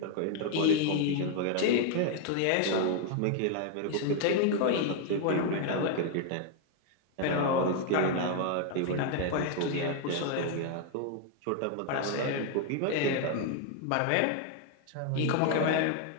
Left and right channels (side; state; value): both; different; correlation 0.00